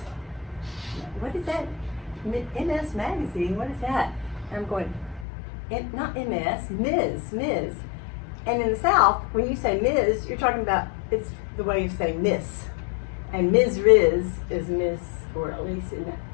what is that? MS Magazine, what is that? And I'm going, not MS, Ms. And in the South, when you say Ms, you're talking about, it's the way you say Miss. And Ms. Riz is Miss, or at least in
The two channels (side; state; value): right; drops out; at 5.2 s